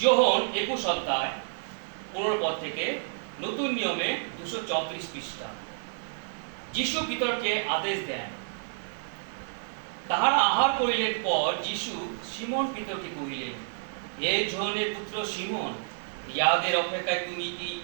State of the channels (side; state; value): left; silent; 58 dB below the other